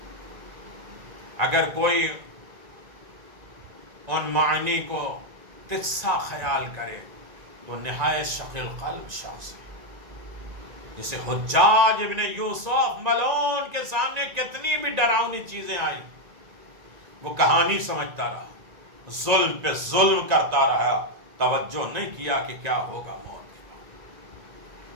اگر کوئی ان معنی کو تجسا خیال کرے تو نہایت شقی القلب شخص ہے. جسے حجاج ابن یوسف ملعون کے سامنے کتنی بھی ڈراؤنی چیزیں آئی, وہ کہانی سمجھتا رہا, ظلم پہ ظلم کرتا رہا, توجہ نہیں کیا کہ کیا ہوگا موت کے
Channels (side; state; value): left; late; 1.9 ms